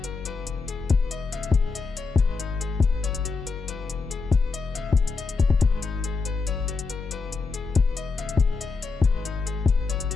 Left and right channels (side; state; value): right; quieter; 4.3 dB